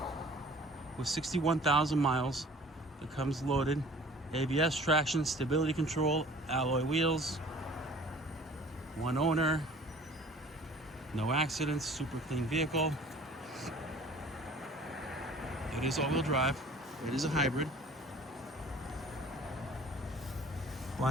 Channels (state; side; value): normal; both; correlation 0.49